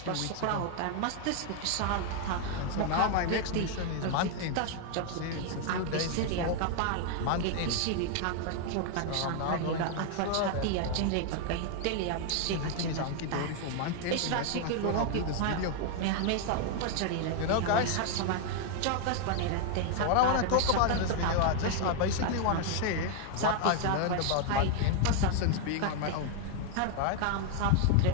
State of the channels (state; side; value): different; both; correlation 0.00